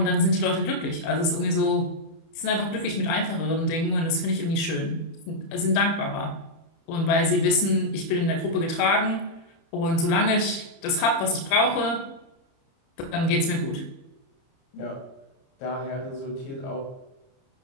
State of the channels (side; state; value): right; late; 31 ms